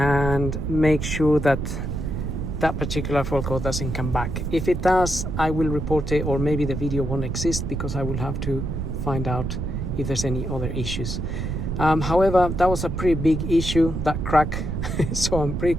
make sure that that particular fault code doesn't come back. If it does, I will report it, or maybe the video won't exist because I will have to find out if there's any other issues. However, that was a pretty big issue, that crack. So I'm pretty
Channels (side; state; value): right; noise; rumble, 3 dB below the sound